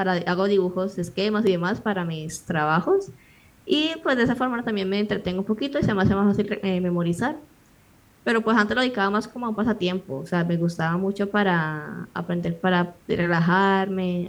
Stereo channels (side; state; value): both; identical; correlation 1.00